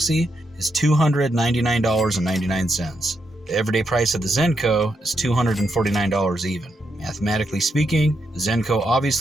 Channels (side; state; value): both; normal; correlation 0.81